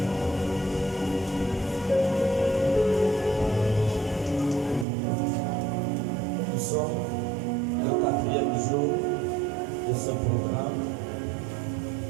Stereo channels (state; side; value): drops out; left; at 4.9 s